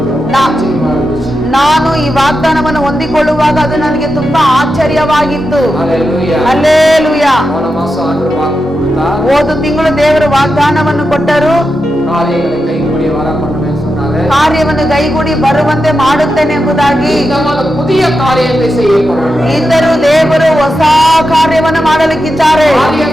ஆச்சரியமா இருந்துச்சு. ನಾನು ಈ ವಾಗ್ದಾನವನ್ನು ಹೊಂದಿಕೊಳ್ಳುವಾಗ ಅದು ನನಗೆ ತುಂಬಾ ಆಶ್ಚರ್ಯವಾಗಿತ್ತು. ஹalleluya. ಹಲ್ಲೆಲೂಯಾ. போன மாசம் ஆண்டவர் வாக்கு கொடுத்தார். ಹೋದ ತಿಂಗಳು ದೇವರು ವಾಗ್ದಾನವನ್ನು ಕೊಟ್ಟರು. காரியங்களை கைகூடி வர பண்ணுவேன்னு சொன்னாரு. ಕಾರ್ಯವನ್ನು ಕೈಗೂಡಿ ಬರುವಂತೆ ಮಾಡುತ್ತೇನೆ ಎಂಬುದಾಗಿ. இந்த புதிய காரியத்தை செய்ய போறாங்க. ಇದ್ದರೂ ದೇವರು ಹೊಸ ಕಾರ್ಯವನ್ನು ಮಾಡಲಿಕ್ಕಿದ್ದಾರೆ.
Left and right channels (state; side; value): normal; both; correlation 0.89